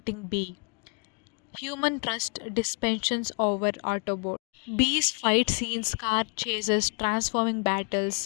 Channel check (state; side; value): quieter; right; 36.7 dB